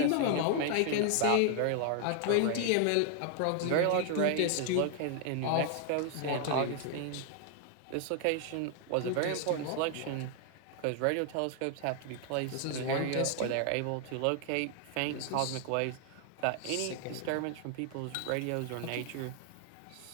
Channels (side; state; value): both; different; correlation 0.00